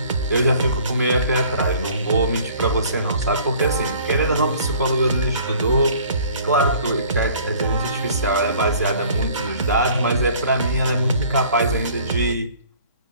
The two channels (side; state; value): both; inverted; correlation -0.53